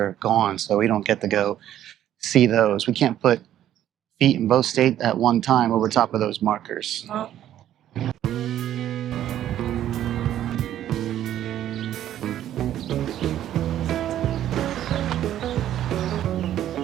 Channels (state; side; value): quieter; left; 11.7 dB